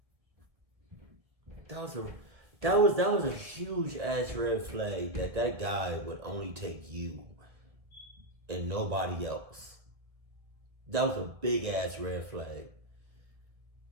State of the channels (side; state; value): left; late; 1.6 ms